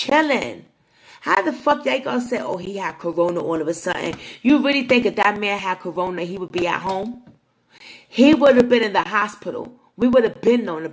How the fuck they gonna say, oh, he had corona all of a sudden? You really think if that man had corona, he would be at home? He would have been in the hospital. We would have been known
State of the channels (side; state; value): both; identical; correlation 1.00